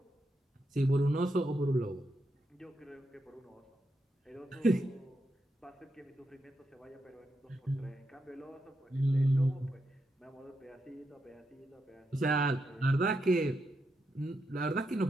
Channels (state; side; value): normal; both; correlation 0.84